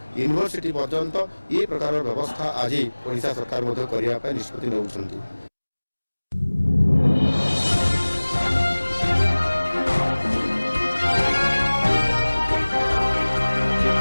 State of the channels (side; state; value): both; inverted; correlation -1.00